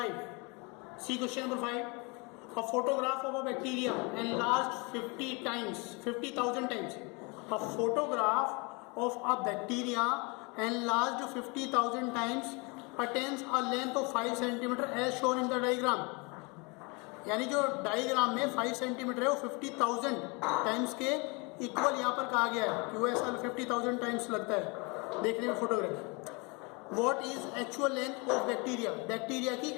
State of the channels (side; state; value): right; quieter; 29.6 dB